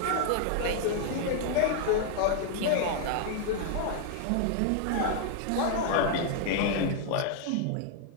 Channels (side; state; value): both; different; correlation 0.00